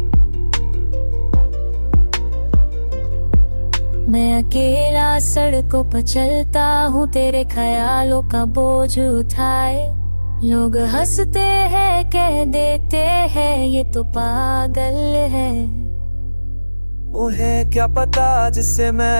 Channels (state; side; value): inverted; both; correlation -1.00